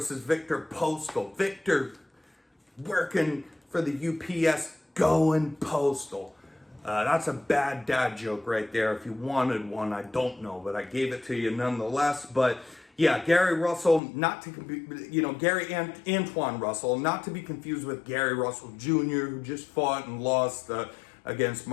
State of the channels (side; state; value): right; drops out; at 14.0 s